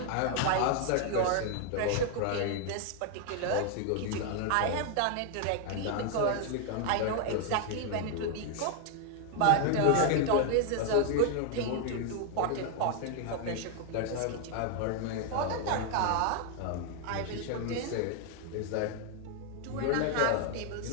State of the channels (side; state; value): both; different; correlation 0.00